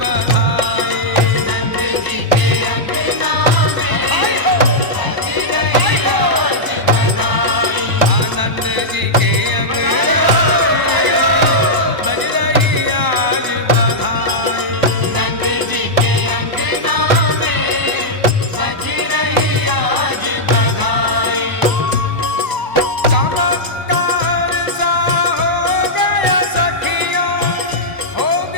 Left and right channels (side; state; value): left; late; 1.0 ms